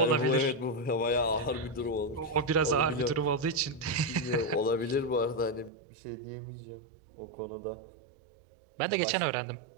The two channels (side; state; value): left; drops out; at 5.7 s